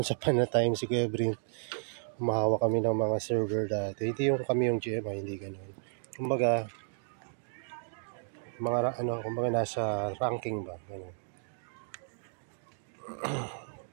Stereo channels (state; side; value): silent; left; digital silence